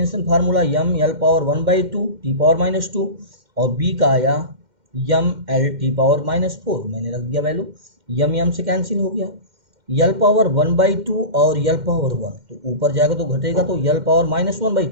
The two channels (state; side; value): late; left; 2.1 ms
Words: formula M L power 1/2 T power -2 और बी का आया यम एल टी पावर -4। मैंने रख दिया वैल्यू, यम यम से कैंसिल हो गया, यल पावर 1/2 और यल पावर 1 तो ऊपर जाएगा तो घटेगा, तो यल पावर